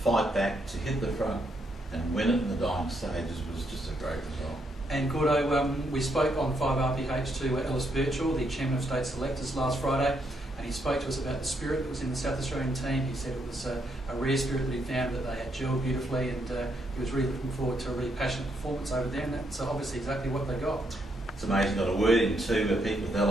back, to hit the front and win it in the dying stages was just a great result. And Gordo, we spoke on 5RPH to Ellis Birchall, the Chairman of State Selectors, last Friday, and he spoke to us about the spirit that was in the South Australian team. He said it was a rare spirit that he found, that they had gelled beautifully, and he was really looking forward to a really passionate performance over there, and that's obviously exactly what they got. It's amazing, got a word in too, Pete with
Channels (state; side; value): normal; both; correlation 0.76